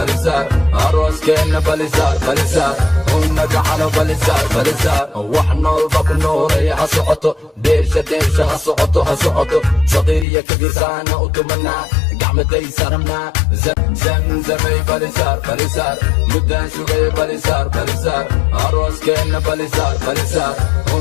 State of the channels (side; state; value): right; drops out; at 10.2 s